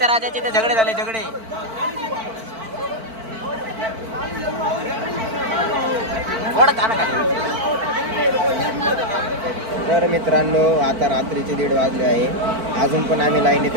राजाचे ते झगडे झाले झगडे. तर मित्रांनो आता रात्रीचे 1:30 वाजले आहे. अजून पण आम्ही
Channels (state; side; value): late; left; 4.5 ms